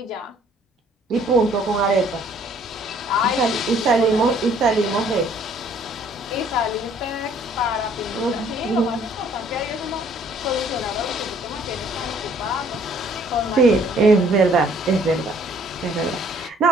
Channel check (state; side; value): normal; both; correlation 0.60